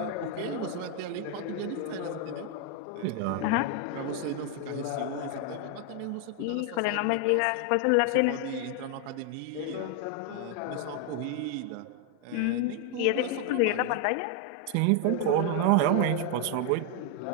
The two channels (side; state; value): both; different; correlation 0.01